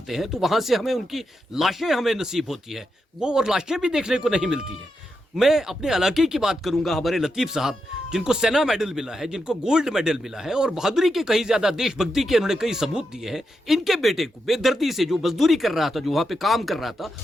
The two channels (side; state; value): both; normal; correlation 0.85